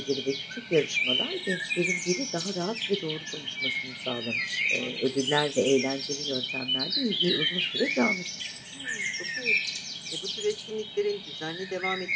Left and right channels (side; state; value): both; identical; correlation 1.00